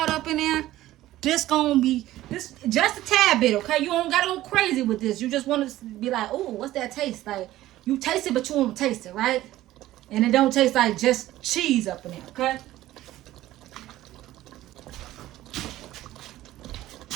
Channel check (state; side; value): quieter; left; 15.1 dB